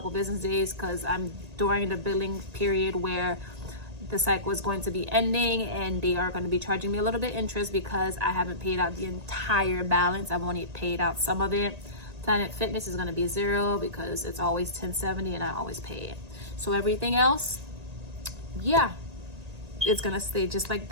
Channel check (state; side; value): late; left; 1.8 ms